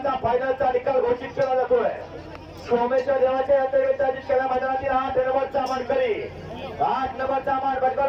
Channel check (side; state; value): both; identical; correlation 1.00